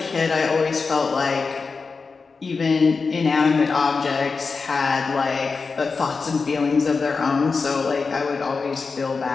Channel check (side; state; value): right; quieter; 4.6 dB